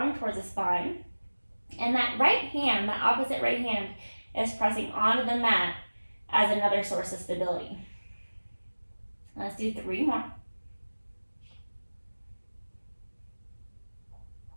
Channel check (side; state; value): both; inverted; correlation -1.00